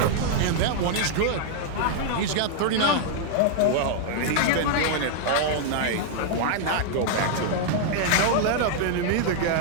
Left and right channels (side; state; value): both; different; correlation -0.01